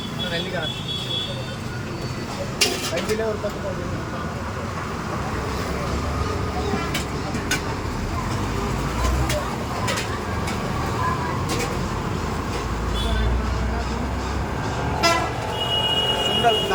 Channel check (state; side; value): identical; both; correlation 1.00